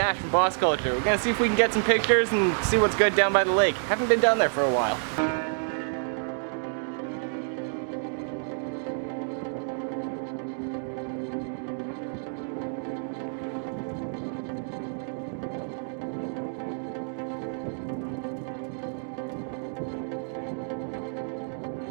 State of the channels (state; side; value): silent; left; digital silence